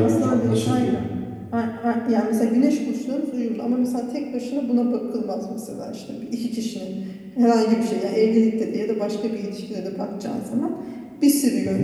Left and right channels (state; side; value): identical; both; correlation 1.00